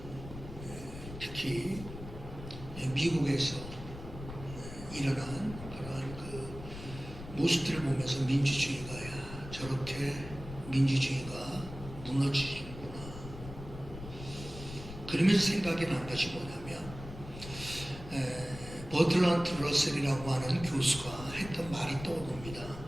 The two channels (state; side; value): noise; left; rumble, 12 dB below the sound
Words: 특히 미국에서 일어난 그런 그 모습들을 보면서 민주주의가 저렇게 민주주의가 무너지는구나. 그러면서 생각이 난 것이 뭐냐면 버틀런트 러셀이라고 하는 교수가 했던 말이 떠오릅니다.